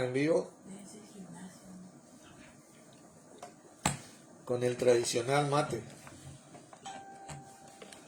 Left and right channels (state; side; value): identical; both; correlation 1.00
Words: en vivo con el tradicional mate.